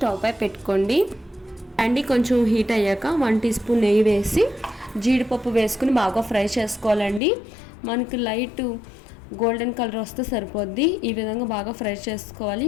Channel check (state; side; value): drops out; right; at 7.2 s